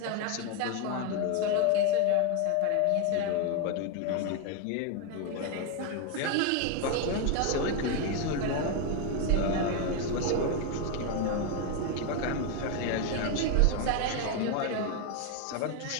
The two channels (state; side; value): different; both; correlation 0.01